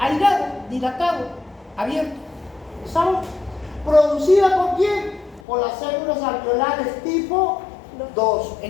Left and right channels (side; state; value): right; drops out; at 5.4 s